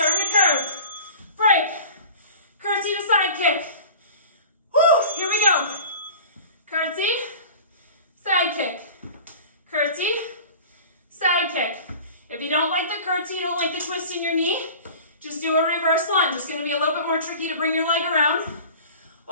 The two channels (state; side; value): inverted; both; correlation -0.41